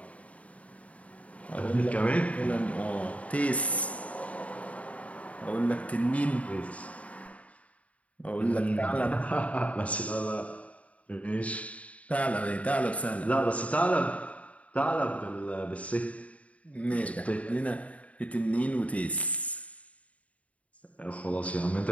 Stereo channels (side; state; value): right; late; 0.067 ms